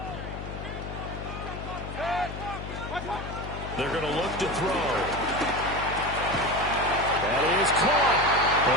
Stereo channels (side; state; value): left; noise; hum, 8 dB below the sound